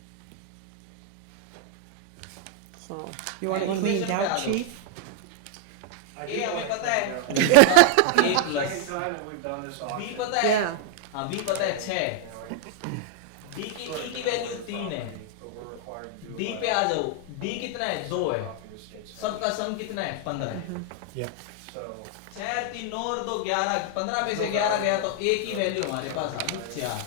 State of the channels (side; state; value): both; different; correlation 0.00